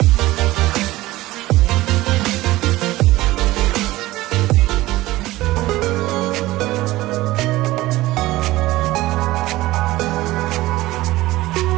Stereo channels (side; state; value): left; quieter; 17.9 dB